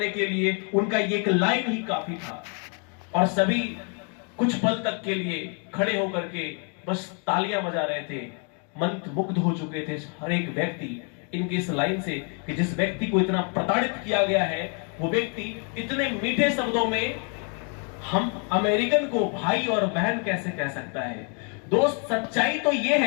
के लिए उनका ये एक लाइन ही काफी था। और सभी कुछ पल तक के लिए खड़े होकर के बस तालियां बजा रहे थे, मंत्रमुग्ध हो चुके थे हर एक व्यक्ति इनकी इस लाइन से कि जिस व्यक्ति को इतना प्रताड़ित किया गया है, वो व्यक्ति इतने मीठे शब्दों में हम अमेरिकन को भाई और बहन कैसे कह सकता है। दोस्त, सच्चाई तो यह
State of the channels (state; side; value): quieter; right; 39.7 dB